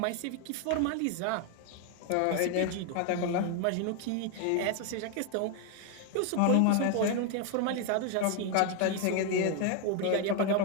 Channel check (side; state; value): both; different; correlation 0.01